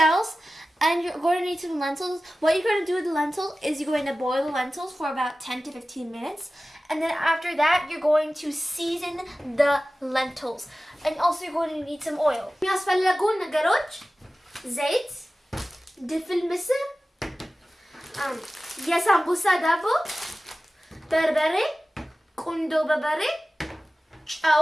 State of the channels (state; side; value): normal; both; correlation 0.96